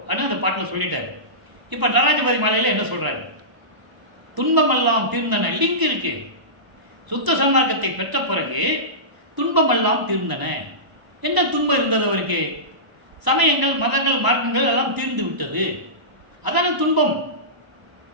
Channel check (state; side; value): late; left; 1.0 ms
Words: அந்த பாட்டில் சொல்லிட்டார். இப்போ நடராஜபதி மாலையில் என்ன சொல்றாரு? துன்பமெல்லாம் தீர்ந்தன. லிங்க் இருக்கு. சுத்த சன்மார்க்கத்தை பெற்ற பிறகு துன்பமெல்லாம் தீர்ந்தன. என்ன துன்பம் இருந்தது அவருக்கு? சமயங்கள், மதங்கள், மார்க்கங்கள் எல்லாம் தீர்ந்து விட்டது. அதான துன்பம்.